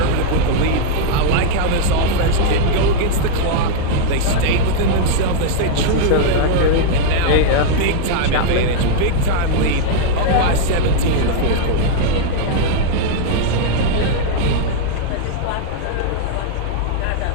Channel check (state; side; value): different; both; correlation -0.01